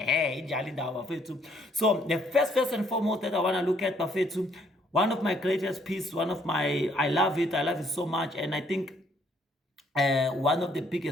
So the first and foremost that I want to look at, Bafetu, one of my greatest pieces, I love it so much, and I think one of the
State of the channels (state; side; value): normal; both; correlation 0.67